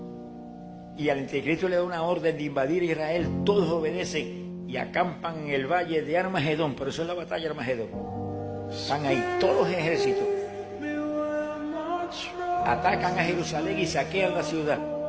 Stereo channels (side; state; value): both; identical; correlation 1.00